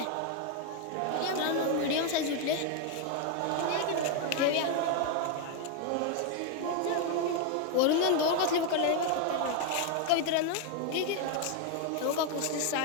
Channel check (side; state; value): both; different; correlation 0.01